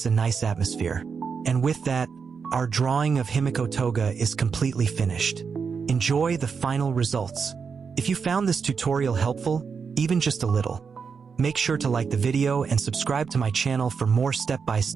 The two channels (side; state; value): left; quieter; 5.8 dB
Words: a nice atmosphere. And with that, our drawing of Himiko Toga is completely finished. Enjoy the final results. If you found this tutorial helpful, even just a little, make sure to like the video and subscribe to my channel for more